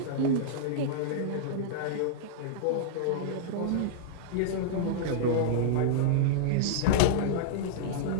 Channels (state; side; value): different; both; correlation -0.02